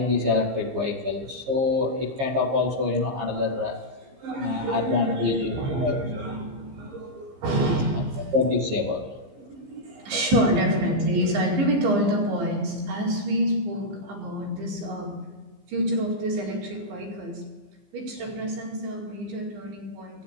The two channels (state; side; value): late; left; 15 ms